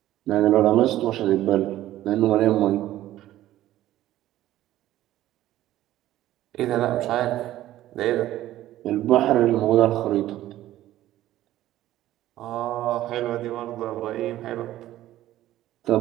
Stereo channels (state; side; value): quieter; left; 14.2 dB